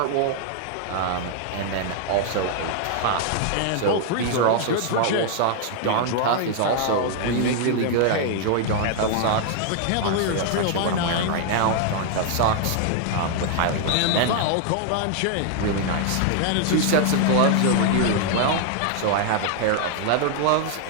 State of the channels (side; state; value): both; different; correlation 0.00